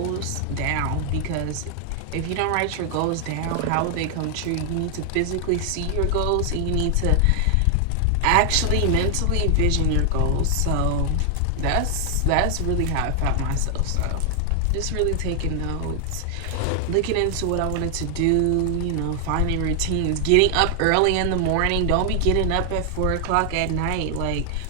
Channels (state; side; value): different; both; correlation 0.00